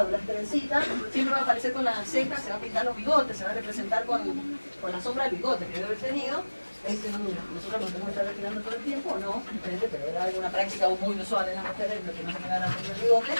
las trencitas, siempre va a aparecer con las cejas, se va a pintar los bigotes, se va a representar con la sombra del bigote que debe haber tenido. Nosotros nos tenemos que estar retirando todo el tiempo, no, pero era alguna práctica muy usual en las mujeres, que no se quedaran con el bigote.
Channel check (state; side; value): inverted; both; correlation -1.00